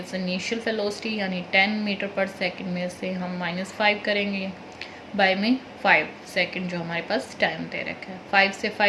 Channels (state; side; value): identical; both; correlation 1.00